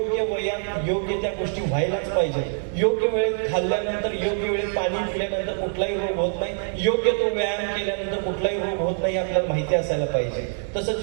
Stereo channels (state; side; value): silent; left; 62 dB below the other